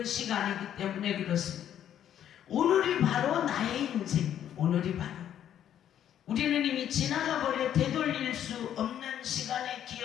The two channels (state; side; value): quieter; right; 10.3 dB